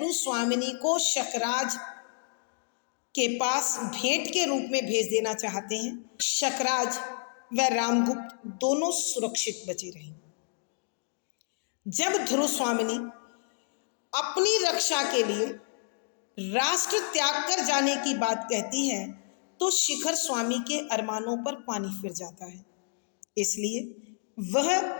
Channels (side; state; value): right; silent; digital silence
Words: स्वामिनी को शकराज के पास भेंट के रूप में भेज देना चाहते हैं। शकराज व रामगुप्त दोनों सुरक्षित बचे रहे। जब ध्रुव स्वामिनी अपनी रक्षा के लिए राष्ट्र त्याग कर जाने की बात कहती है तो शिखर स्वामी के अरमानों पर पानी फिर जाता है। इसलिए वह